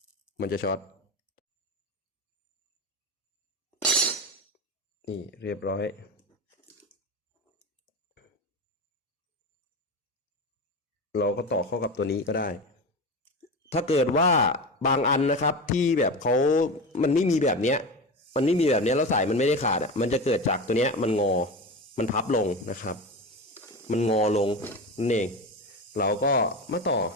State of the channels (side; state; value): both; normal; correlation 0.24